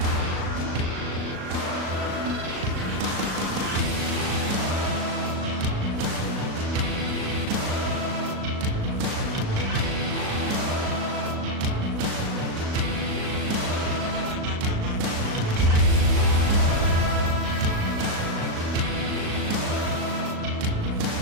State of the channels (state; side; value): late; left; 37 ms